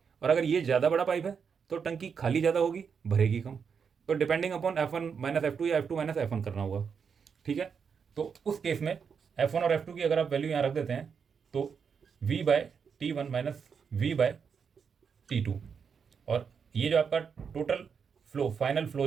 और अगर ये ज़्यादा बड़ा पाइप है तो टंकी खाली ज़्यादा होगी, भरेगी कम। तो depending upon F1 minus F2 या F2 माइनस F1 करना होगा, ठीक है। तो उस केस में F1 और F2 की अगर आप वैल्यू यहाँ रख देते हैं तो V by T1 minus V by T2, और ये जो आपका टोटल फ्लो, फाइनल फ्लो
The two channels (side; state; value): left; quieter; 6.4 dB